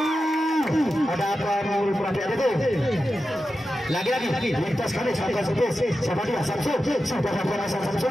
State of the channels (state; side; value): normal; both; correlation 0.91